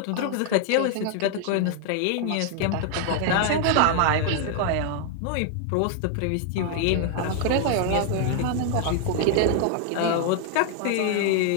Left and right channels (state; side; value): different; both; correlation 0.00